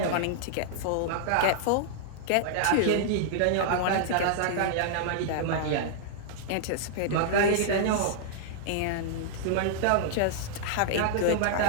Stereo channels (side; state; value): both; different; correlation -0.01